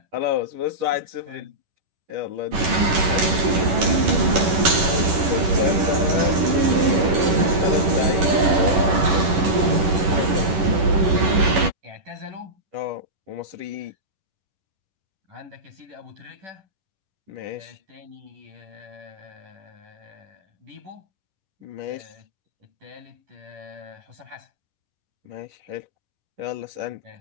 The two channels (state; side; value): late; left; 11 ms